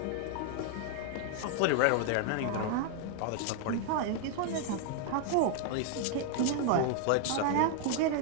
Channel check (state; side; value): different; both; correlation 0.00